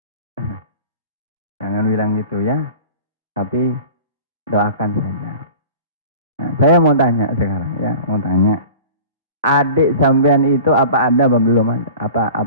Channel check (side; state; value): both; inverted; correlation -0.40